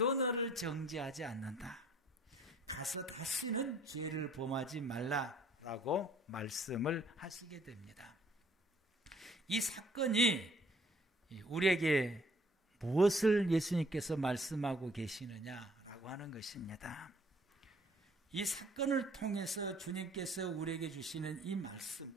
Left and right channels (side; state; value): both; normal; correlation 0.59